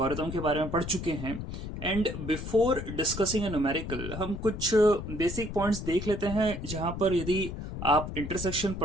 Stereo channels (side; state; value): left; noise; rumble, 7 dB below the sound